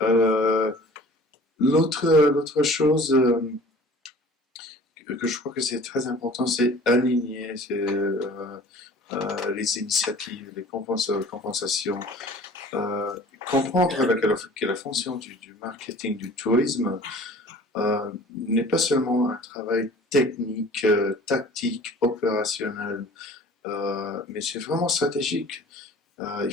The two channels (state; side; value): normal; both; correlation 0.47